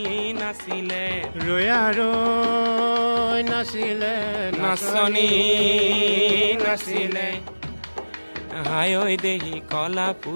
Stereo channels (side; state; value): both; inverted; correlation -1.00